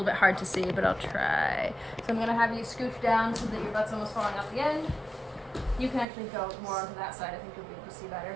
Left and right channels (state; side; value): drops out; left; at 6.1 s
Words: bit hard to see, but I'll try. So I'm gonna have you scooch down so that your butt's almost falling out the end. You can actually go more onto that side. I think you'll be able to see better.